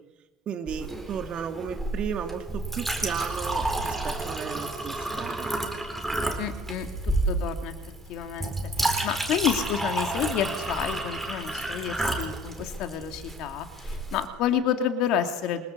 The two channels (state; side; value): normal; both; correlation 0.52